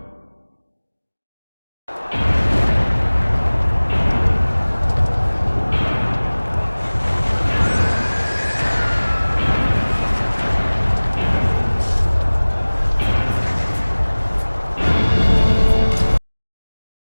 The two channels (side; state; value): both; inverted; correlation -1.00